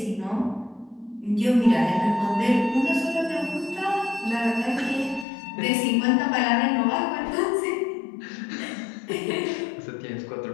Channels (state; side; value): drops out; right; at 5.2 s